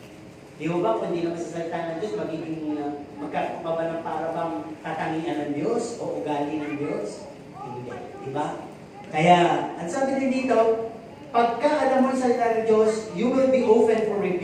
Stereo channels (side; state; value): both; identical; correlation 1.00